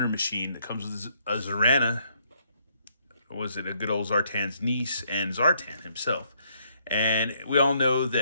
Machine that comes with a Zarana. Was it a good old Zartan's niece and Zartan himself? And we all know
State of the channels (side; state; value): both; inverted; correlation -0.71